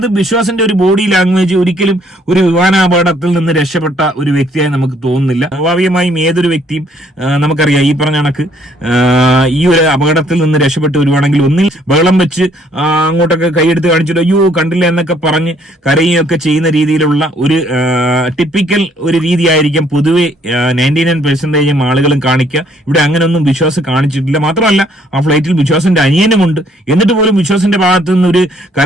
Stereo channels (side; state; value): both; normal; correlation 0.65